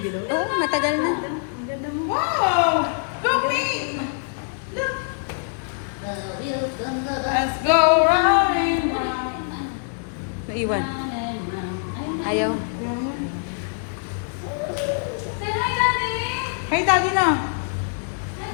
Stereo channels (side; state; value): right; silent; digital silence